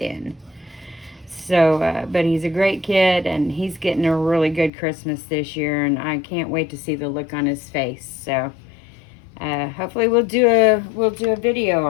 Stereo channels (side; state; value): right; drops out; at 4.7 s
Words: So, but he's a great kid, and he's getting a really good Christmas this year, and I can't wait to see the look on his face. So, hopefully we'll do a video